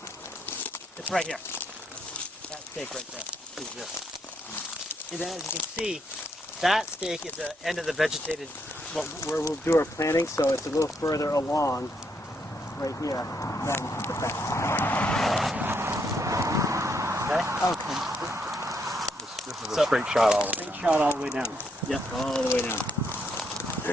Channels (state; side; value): normal; both; correlation 0.75